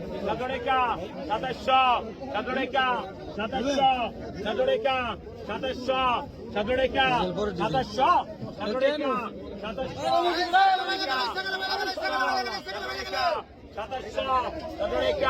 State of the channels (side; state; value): both; identical; correlation 1.00